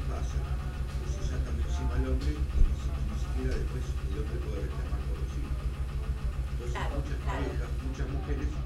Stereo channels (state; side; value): identical; both; correlation 1.00